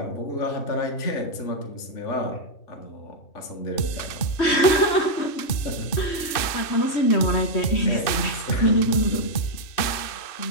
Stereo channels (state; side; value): late; right; 2.6 ms